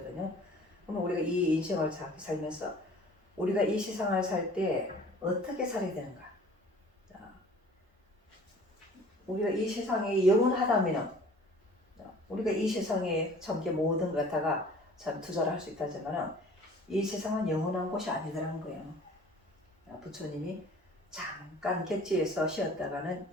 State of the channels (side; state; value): both; normal; correlation 0.49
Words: 그러면 우리가 이 인생을 살면서 우리가 이 세상을 살 때 어떻게 살아야 되는가? 우리가 이 세상에 영원하다면은 우리가 이 세상에 참 모든 것 갖다가 참 투자를 할 수 있다지만은 이 세상은 영원한 곳이 아니더라는 거예요. 부처님이 잠깐 객지에서 쉬었다가는